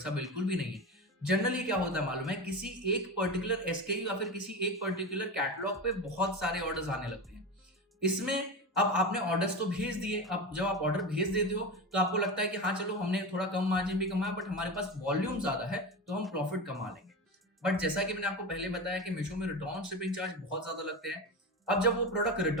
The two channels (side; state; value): both; normal; correlation 0.23